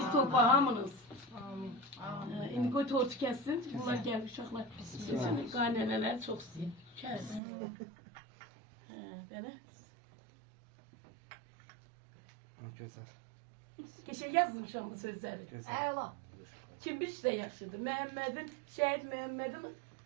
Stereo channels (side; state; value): left; drops out; at 7.4 s